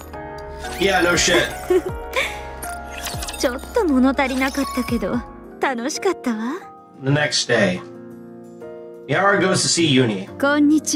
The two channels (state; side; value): identical; both; correlation 1.00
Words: Yeah, no shit. ちょっと物足りなかったけど楽しかったわ。 The next day, Yara goes to see Uni. こんに